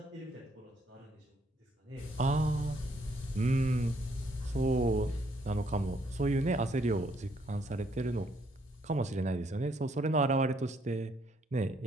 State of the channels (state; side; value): normal; both; correlation 0.70